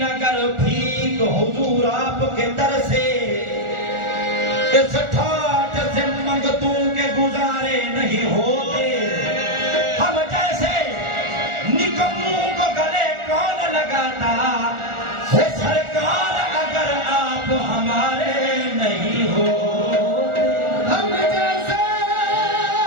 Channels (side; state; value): left; late; 1.4 ms